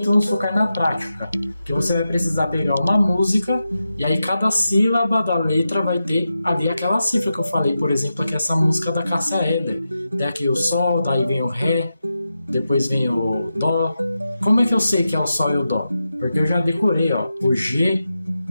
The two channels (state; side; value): inverted; both; correlation -0.90